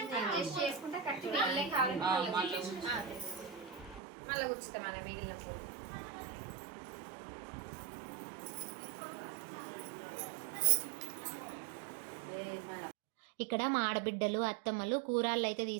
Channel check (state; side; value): drops out; left; at 4.0 s